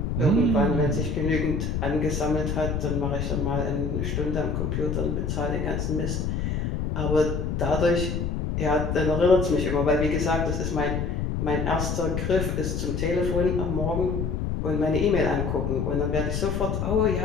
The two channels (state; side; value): noise; left; rumble, 1 dB below the sound